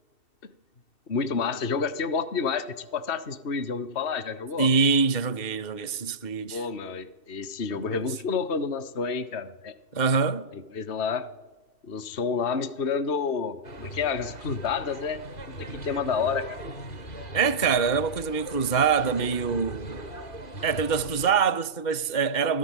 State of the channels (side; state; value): right; late; 2.7 ms